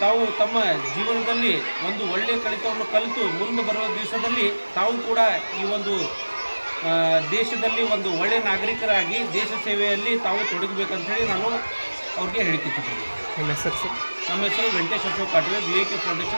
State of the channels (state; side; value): inverted; both; correlation -1.00